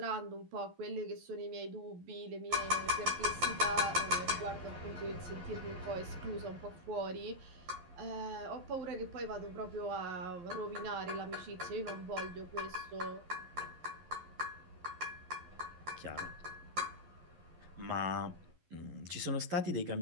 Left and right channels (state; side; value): late; left; 12 ms